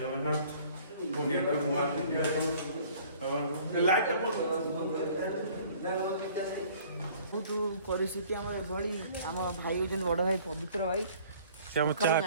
ଜଗନ୍ନାଥ। ପୁଣି ଏକ ନୂଆ ଭିଡ଼ିଓ ଲାଇଟ୍ ବହୁତ ପରିସ୍ଥିତି ଆମର ଏଭଳି। ଆମ ଭାଇ ହଉଛନ୍ତି ବଡ଼ ଭାଇ ପବିତ୍ର ଭାଇ। ସେ ଆମ ଚାହା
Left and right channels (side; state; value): both; inverted; correlation -0.53